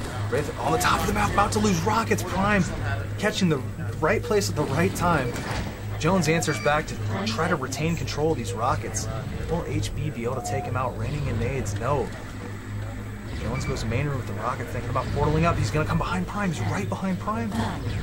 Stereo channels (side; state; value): both; identical; correlation 1.00